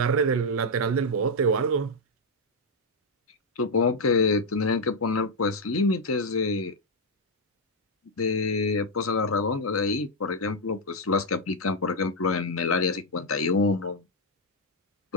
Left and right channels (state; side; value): normal; both; correlation -0.01